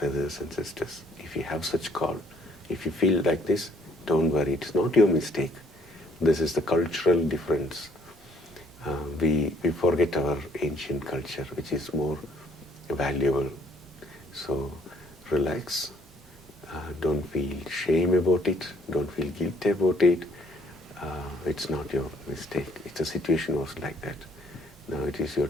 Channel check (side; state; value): both; normal; correlation 0.63